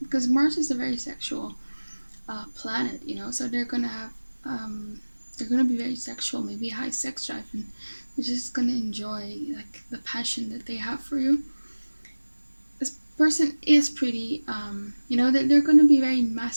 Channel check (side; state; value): both; inverted; correlation -1.00